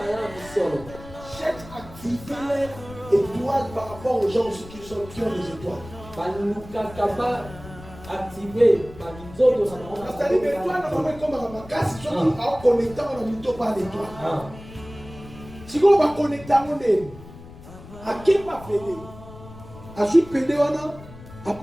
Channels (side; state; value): left; noise; rumble, 17 dB below the sound